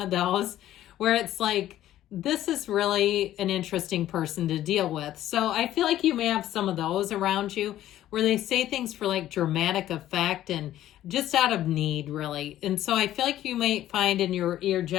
of those where it's like, this is really an interesting person to deal with. So I feel like you may have some of those around you where they say things for like dramatic effect and just out of need, really. And so I feel like you may find in your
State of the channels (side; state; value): right; quieter; 13.2 dB